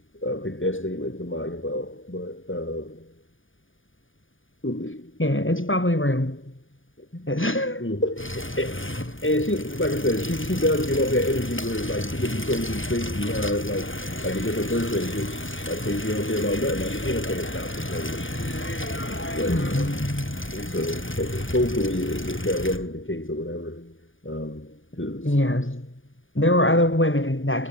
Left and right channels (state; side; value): late; right; 0.57 ms